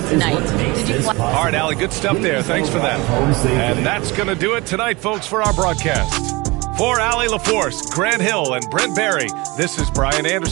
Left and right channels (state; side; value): quieter; left; 24.1 dB